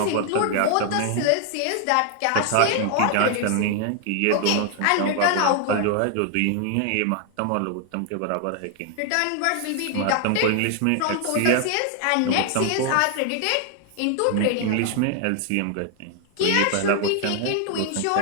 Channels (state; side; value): different; both; correlation 0.00